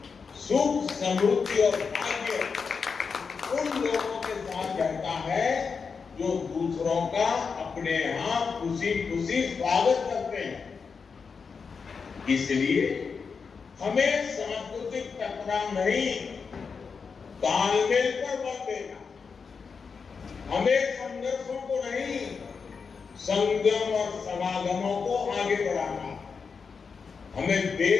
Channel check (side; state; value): right; quieter; 5.5 dB